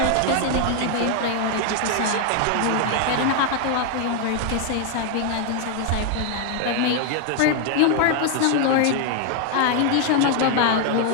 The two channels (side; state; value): both; different; correlation 0.00